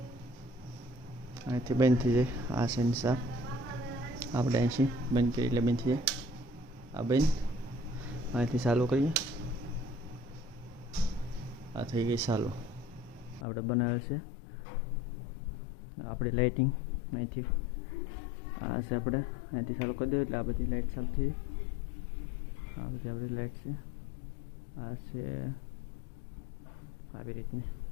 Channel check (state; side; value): drops out; right; at 13.5 s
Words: અહીંથી બંધ થઈ જાય આ છે એની સાફ આપણે અહીંથી બંધ કરીએ એટલે બંધ થઈ જાય આ બંધ અહીંથી ચાલુ કરીએ આ થઈ ગઈ ચાલુ આપણે બનાવે છે આપણી લાઇટિંગ અહીંથી આ છે આપણે અહીંથી ચાલુ કરી દઈએ એટલે આ બધી લાઇટ ચાલુ થઈ આ બધી આપણી લાઇટ છે આ છે આવી રીતની